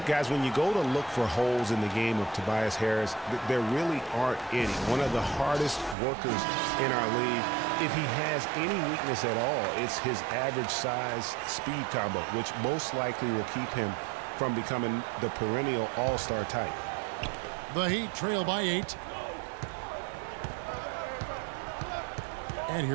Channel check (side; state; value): left; drops out; at 6.0 s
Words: guys, when you go to look for holes in the game of Tobias Harris, there really aren't any. One of the hardest workers in our league. If he has any weakness at all, it's his average size speed combo, which most likely will keep him from becoming the perennial all-star type. The Heat trail by 8. And